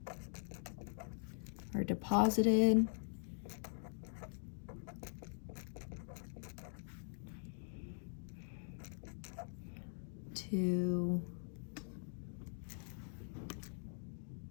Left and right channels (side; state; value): right; silent; digital silence